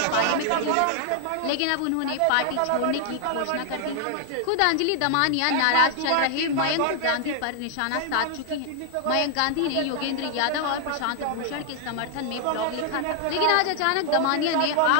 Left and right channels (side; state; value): both; different; correlation 0.00